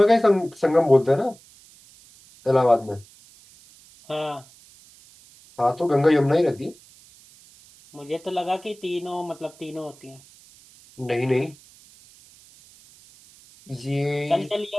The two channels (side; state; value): right; noise; hiss, 25 dB below the sound